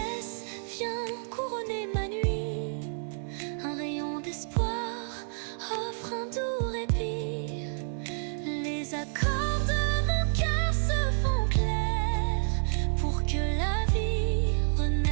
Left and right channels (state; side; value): silent; left; 58 dB below the other